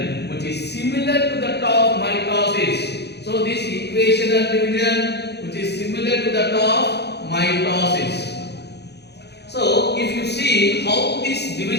which is similar to that of mitosis. So this equational division, which is similar to that of mitosis. So if you see how this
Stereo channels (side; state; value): right; late; 0.49 ms